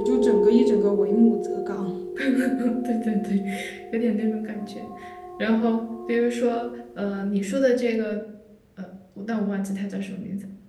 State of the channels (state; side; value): identical; both; correlation 1.00